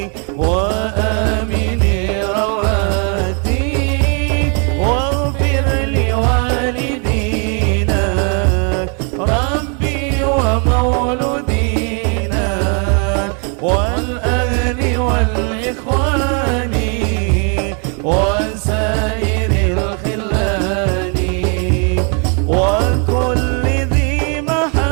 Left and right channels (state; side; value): quieter; left; 38.1 dB